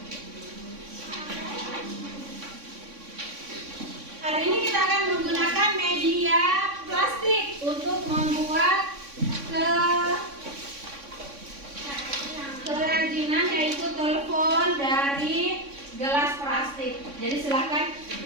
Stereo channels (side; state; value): left; late; 3.6 ms